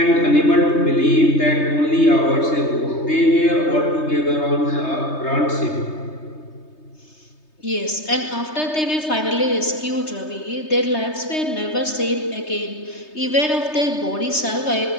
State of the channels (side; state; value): right; late; 3.3 ms